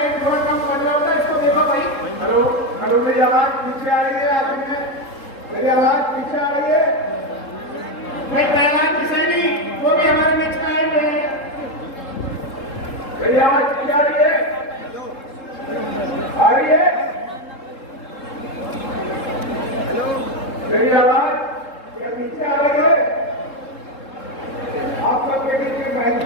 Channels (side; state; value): right; late; 3.7 ms